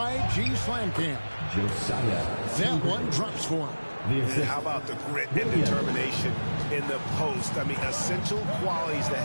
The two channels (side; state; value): both; inverted; correlation -1.00